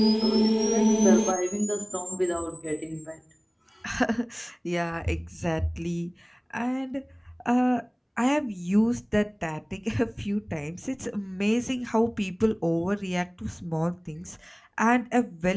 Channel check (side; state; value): both; identical; correlation 1.00